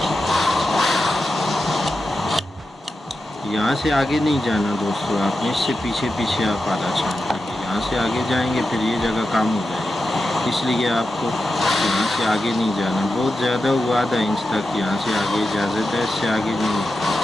यहाँ से आगे नहीं जाना दोस्तों, आपने इससे पीछे पीछे आप आधा छांट लेंगे। यहाँ से आगे जाएंगे फिर ये जगह कम हो जाएगी, इसलिए आपको यहाँ से आगे नहीं जाना। बहुत ज़्यादा हुआ आधा इंच तक, यहाँ से आगे इजाज़त है, इससे आगे नहीं।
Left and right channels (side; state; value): both; normal; correlation 0.90